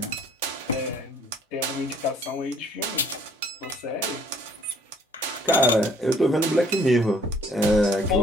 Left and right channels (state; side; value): normal; both; correlation 0.59